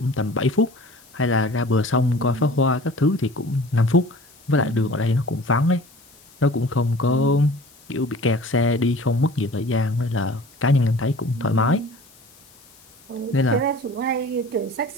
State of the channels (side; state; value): left; noise; hiss, 26 dB below the sound